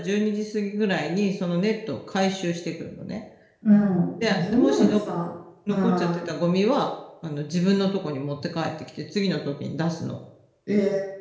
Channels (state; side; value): identical; both; correlation 1.00